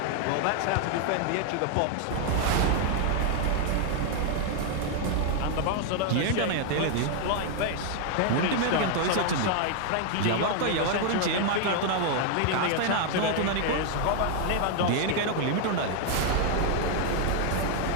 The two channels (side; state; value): both; different; correlation 0.00